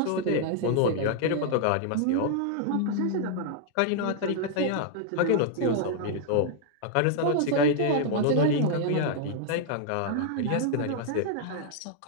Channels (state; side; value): different; both; correlation -0.01